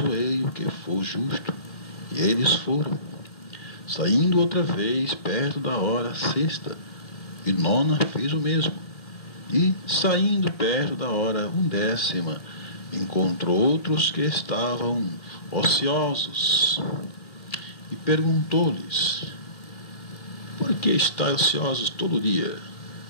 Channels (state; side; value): late; right; 1.7 ms